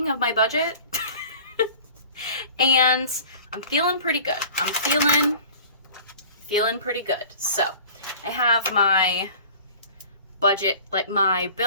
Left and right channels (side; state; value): both; inverted; correlation -0.44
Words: of my budget. And I'm feeling pretty good. I'm feeling pretty good. So I have my budget, like my